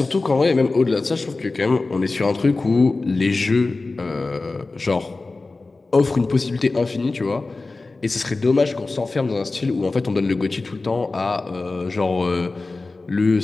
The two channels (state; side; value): quieter; right; 3.5 dB